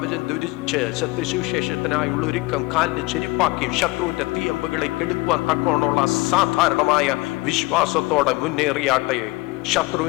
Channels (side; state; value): right; quieter; 22.3 dB